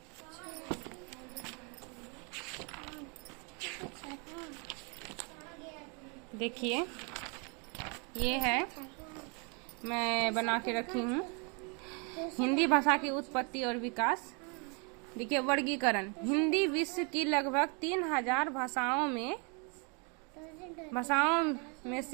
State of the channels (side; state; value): left; quieter; 34.4 dB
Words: देखिए, ये है, मैं बना के रखी हूँ हिंदी भाषा की उत्पत्ति और विकास। देखिए, वर्गीकरण। हिंदी विश्व की लगभग 3000 भाषाओं में